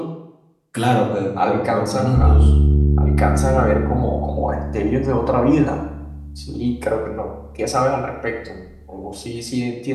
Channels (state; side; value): identical; both; correlation 1.00